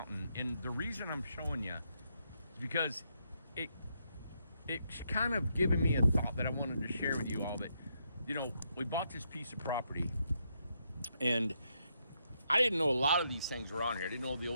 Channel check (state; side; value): inverted; both; correlation -0.78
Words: And the reason I'm showing you is because it's kind of given me a thought that I wanted to share with you all. That, you know, we bought this piece of property, And I didn't know a lot of these things were on here. I didn't know the